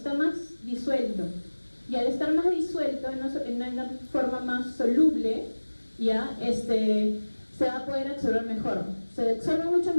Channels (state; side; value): inverted; both; correlation -1.00